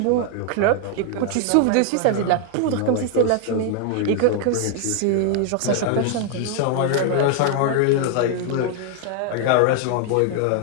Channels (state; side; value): different; both; correlation 0.00